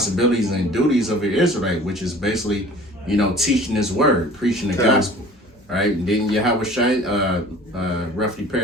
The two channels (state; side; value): normal; both; correlation 0.46